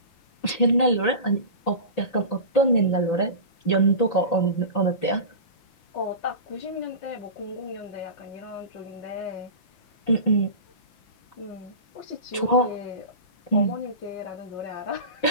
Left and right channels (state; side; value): late; right; 5.9 ms